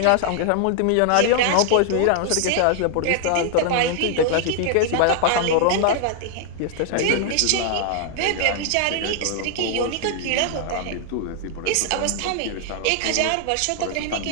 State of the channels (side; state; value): both; different; correlation 0.00